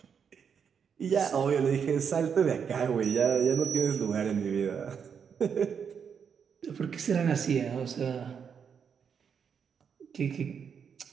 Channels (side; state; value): left; quieter; 7.0 dB